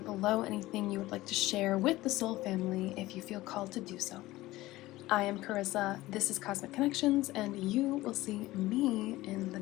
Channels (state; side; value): quieter; right; 17.7 dB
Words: below anything you would like to share with the soul family if you feel called to do so. I am Carissa, this is Cosmic Connections, and you will see me in the